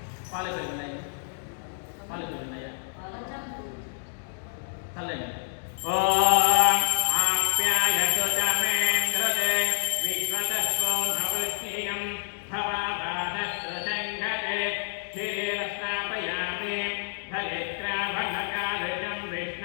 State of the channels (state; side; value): silent; right; 59 dB below the other